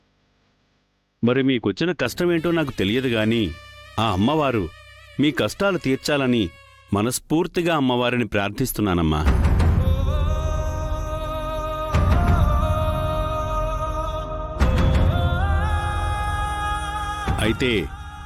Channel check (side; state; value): both; identical; correlation 1.00